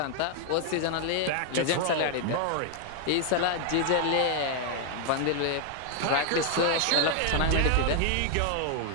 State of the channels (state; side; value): different; both; correlation 0.00